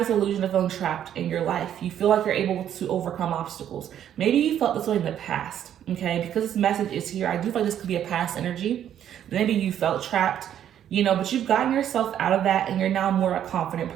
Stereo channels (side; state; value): left; quieter; 10.2 dB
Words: illusion of feeling trapped in your life. You feel like you're able to overcome obstacles. Maybe you felt this way in the past, okay? Because this message is here, I do feel like this could be a past energy. Maybe you felt trapped, you know, but you've gotten yourself out of that and you're now more a confident